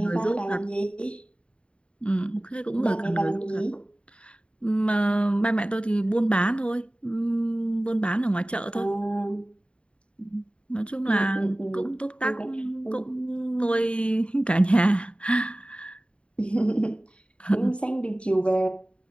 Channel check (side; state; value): right; late; 0.057 ms